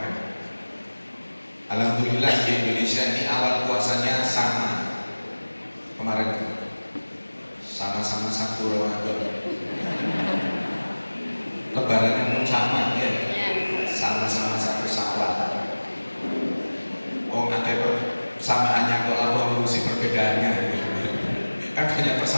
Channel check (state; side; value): inverted; both; correlation -1.00